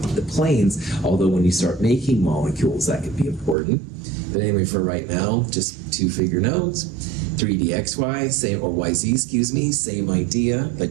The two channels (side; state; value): left; drops out; at 3.6 s